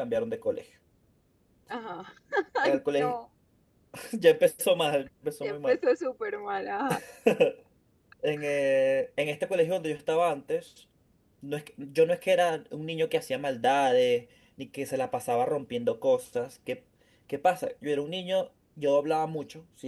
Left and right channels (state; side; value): identical; both; correlation 1.00